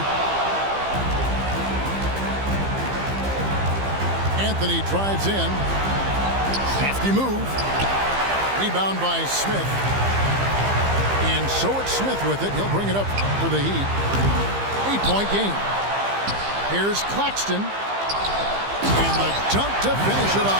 Anthony drives in. Safety move. Rebound by Smith. And so it's Smith with it. He'll bring it up for the Heat. 8-point game. Here's Claxton. And the dunk to finish it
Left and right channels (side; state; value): left; late; 15 ms